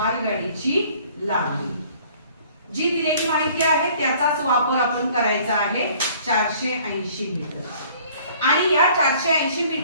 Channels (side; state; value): both; inverted; correlation -0.54